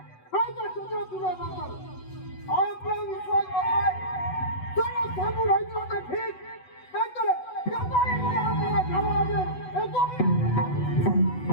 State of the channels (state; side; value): late; right; 8.0 ms